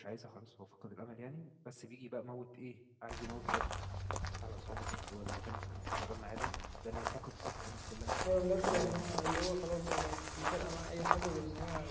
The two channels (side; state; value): both; identical; correlation 1.00